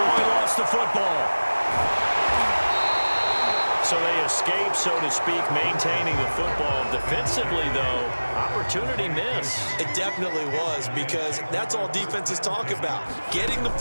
lost the football. So they escape, so to speak, maintaining the football. Defensively, though, opportunity miss. It definitely was, because that's all defenses talk about. Getting the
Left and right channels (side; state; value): both; inverted; correlation -1.00